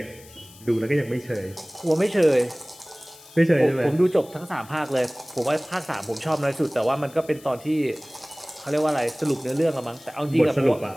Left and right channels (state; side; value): noise; left; hiss, 22 dB below the sound